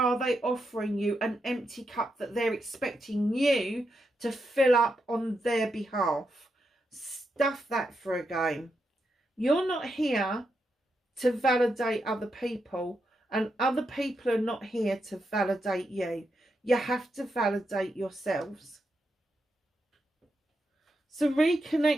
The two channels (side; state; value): both; normal; correlation 0.84